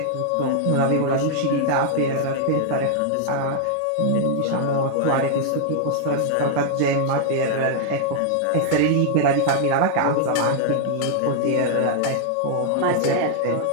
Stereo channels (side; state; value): both; different; correlation -0.01